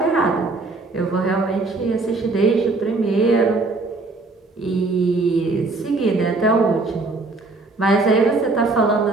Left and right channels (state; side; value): quieter; left; 3.4 dB